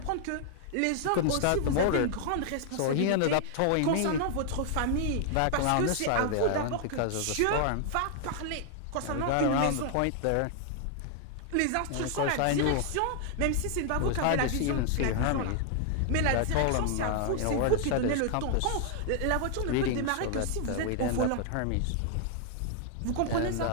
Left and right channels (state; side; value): different; both; correlation 0.00